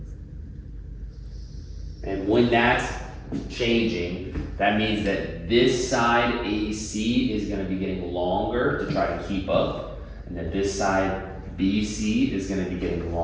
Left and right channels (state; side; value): identical; both; correlation 1.00